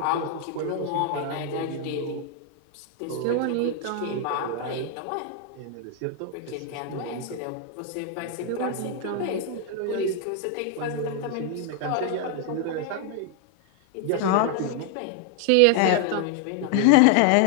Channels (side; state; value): both; different; correlation 0.00